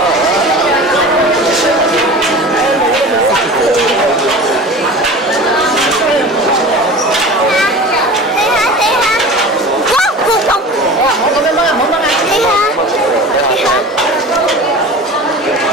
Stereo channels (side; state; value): both; normal; correlation 0.36